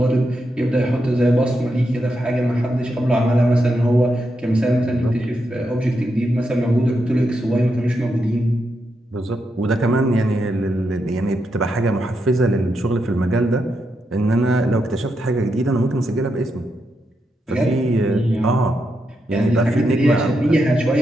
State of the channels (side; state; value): both; normal; correlation 0.84